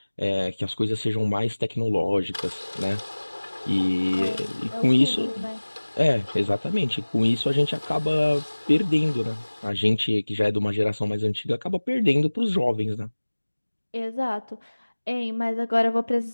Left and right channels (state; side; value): inverted; both; correlation -1.00